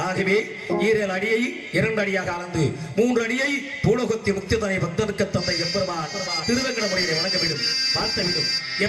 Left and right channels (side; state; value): both; identical; correlation 1.00